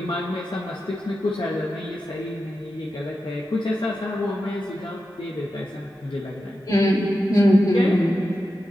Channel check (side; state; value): both; normal; correlation 0.90